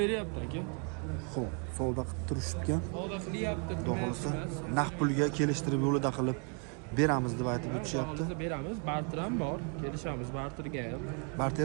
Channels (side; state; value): left; quieter; 38.6 dB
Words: beryapti aka. Xo'p, savdo qilib turishibgan. Savdo qilyapti. Xudo xolasa, naq pulga kelishtirib yo'lida qilib beramiz deb aytib o'tishyapti. Beramiz, barter ham bor. Kelishamiz barterga ham.